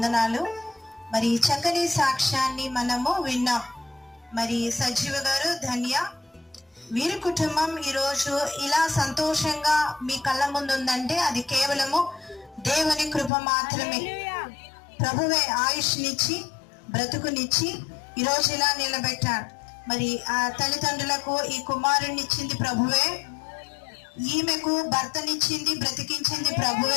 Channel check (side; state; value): right; drops out; at 13.3 s